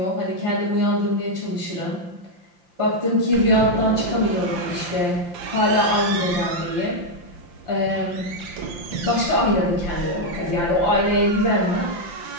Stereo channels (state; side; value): late; left; 5.8 ms